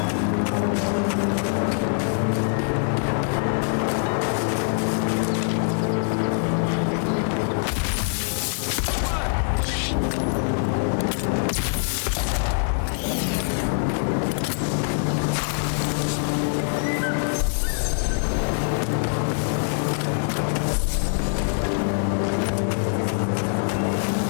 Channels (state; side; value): silent; right; digital silence